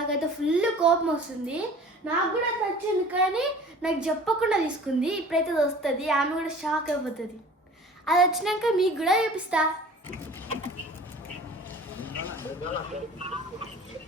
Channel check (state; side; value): normal; both; correlation 0.45